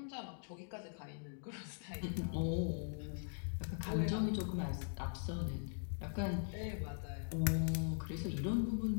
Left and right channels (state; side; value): silent; right; digital silence